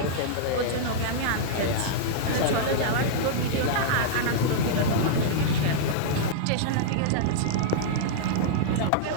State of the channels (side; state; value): both; different; correlation -0.02